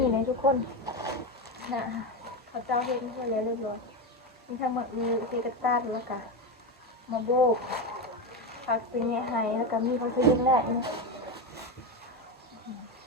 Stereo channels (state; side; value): normal; both; correlation 0.14